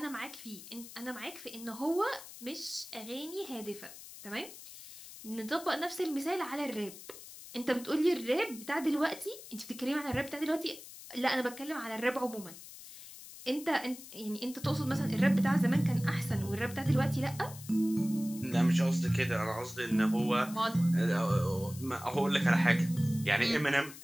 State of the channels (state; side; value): noise; left; hiss, 15 dB below the sound